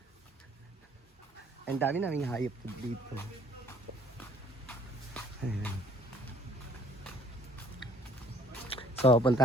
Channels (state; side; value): normal; both; correlation 0.58